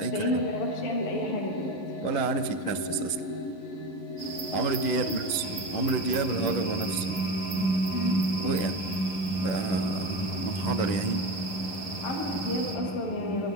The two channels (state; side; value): late; right; 11 ms